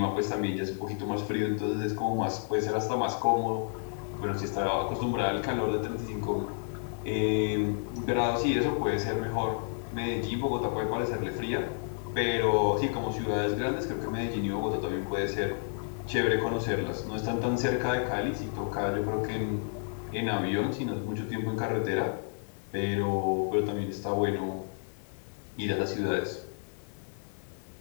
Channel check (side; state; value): right; silent; 57 dB below the other